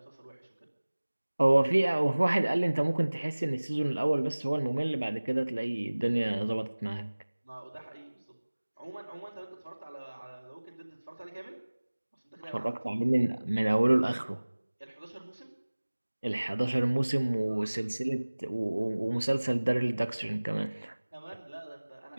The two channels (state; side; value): inverted; both; correlation -1.00